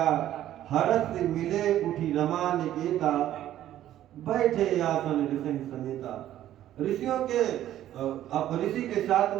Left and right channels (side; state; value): left; quieter; 12.5 dB